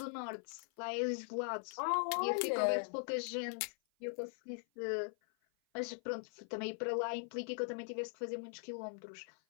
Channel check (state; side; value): silent; right; 51 dB below the other